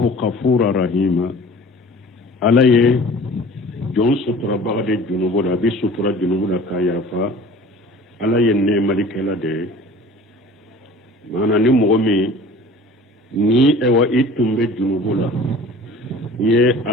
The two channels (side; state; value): both; normal; correlation 0.44